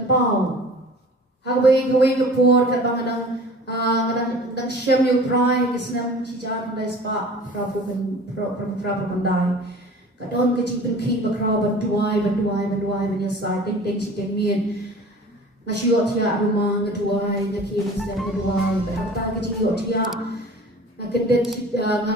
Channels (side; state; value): both; normal; correlation 0.43